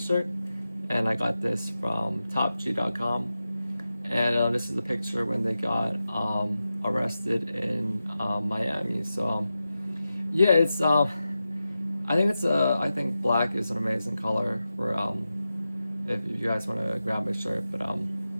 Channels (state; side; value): inverted; both; correlation -0.92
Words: and I got this from topg.com. And this is the picture when they got arrested in Miami. So, yeah, it's I think black is an amazing color for if you guys want to grab my shirt, but